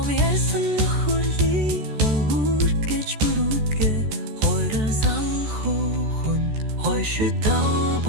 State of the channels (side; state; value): left; late; 14 ms